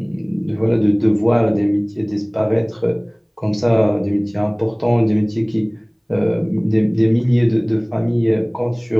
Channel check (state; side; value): identical; both; correlation 1.00